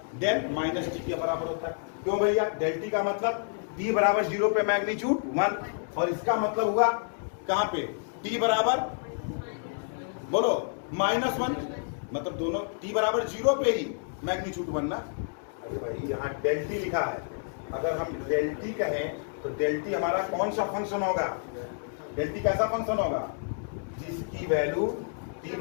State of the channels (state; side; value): silent; right; digital silence